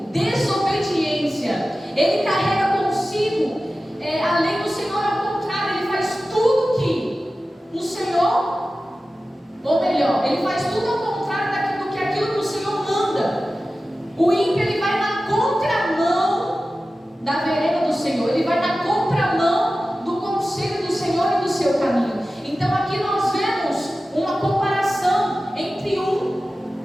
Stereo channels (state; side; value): normal; both; correlation 0.95